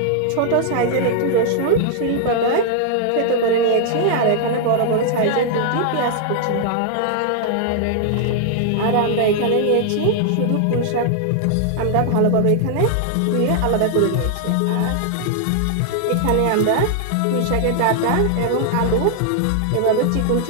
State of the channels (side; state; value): both; different; correlation 0.00